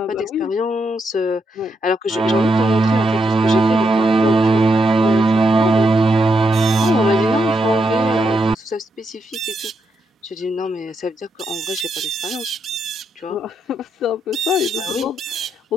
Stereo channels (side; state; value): both; normal; correlation 0.81